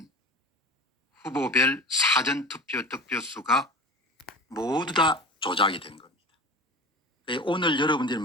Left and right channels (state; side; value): normal; both; correlation 0.33